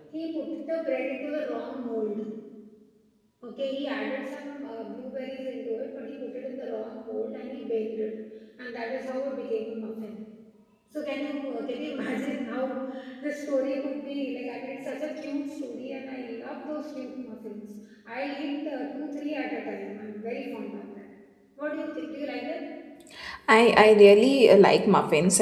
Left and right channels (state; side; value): identical; both; correlation 1.00